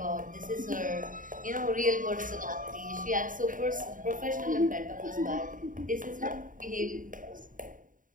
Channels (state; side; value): late; left; 0.39 ms